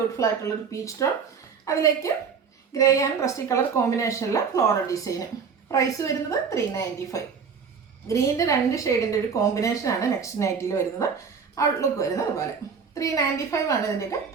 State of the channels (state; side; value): quieter; left; 6.0 dB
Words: ആയിട്ടുള്ളൊരു പീച്ച് ടോൺ, അതിലേക്ക് ഗ്രേ ആൻഡ് റസ്റ്റി കളർ കോമ്പിനേഷനിലെ ഫ്ലോറൽ ഡിസൈന്. പ്രൈസ് വരുന്നത് 395. ഗ്രീനിൻ്റെ 2 ഷെയ്ഡിൻ്റെ ഒരു കോമ്പിനേഷനാണ് നെക്സ്റ്റ് നൈറ്റിൽ വരുന്നത്. ഔട്ട്ലുക്ക് വരുന്നത് അതുപോലെ 395 ആണ് ഇതിൻ്റെയൊക്കെ